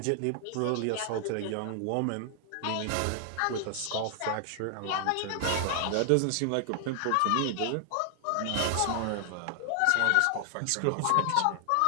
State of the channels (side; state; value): both; different; correlation 0.00